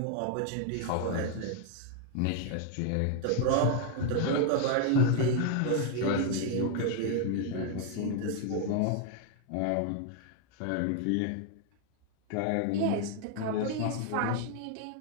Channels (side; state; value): both; different; correlation 0.00